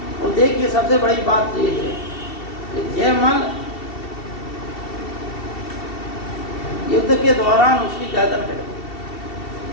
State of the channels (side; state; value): right; late; 2.7 ms